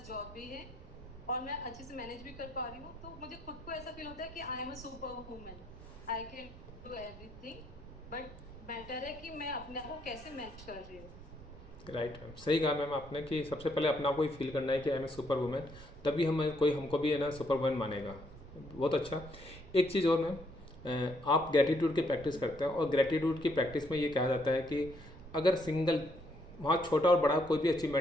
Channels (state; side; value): noise; right; rumble, 17 dB below the sound